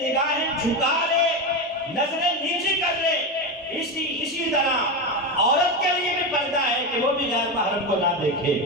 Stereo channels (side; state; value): both; normal; correlation 0.16